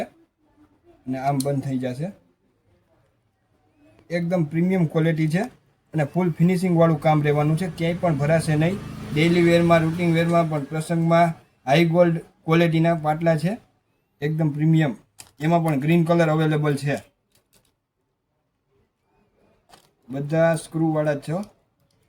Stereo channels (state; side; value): identical; both; correlation 1.00